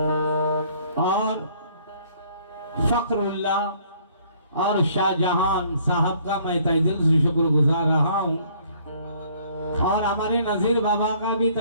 और फखरुल्ला और शाहजहां साहब का मैं तहे दिल से शुक्रगुजार रहा हूँ और हमारे नजीर बाबा का भी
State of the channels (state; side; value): inverted; both; correlation -0.60